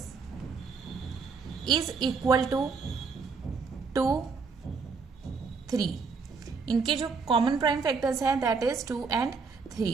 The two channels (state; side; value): quieter; left; 4.9 dB